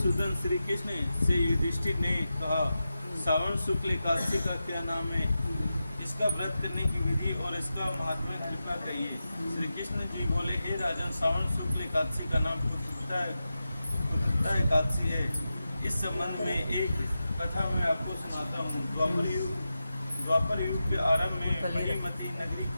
श्री कृष्ण से युधिष्ठिर ने कहा, श्रावण शुक्ल एकादशी का क्या नाम है, इसका व्रत करने की विधि और इसका महात्म्य कृपा कहिए। श्री कृष्ण जी बोले, हे राजन, श्रावण शुक्ल एकादशी का नाम पुत्रदा एकादशी है। इस संबंध में एक कथा मैं आपको सुनाता हूँ। द्वापर युग के आरंभ में महीमती नगरी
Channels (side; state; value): both; inverted; correlation -0.91